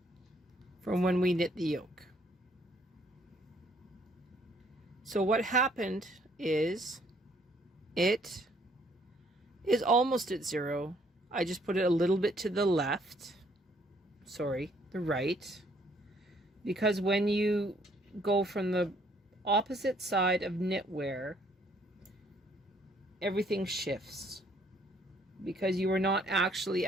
from when we knit the yoke. So what happened is it is almost at 0. I just put it a little bit to the left. Sorry, the right. Because when you go from the opposite side of knitwear, everything shifts. Because you were not actually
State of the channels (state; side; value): normal; both; correlation 0.65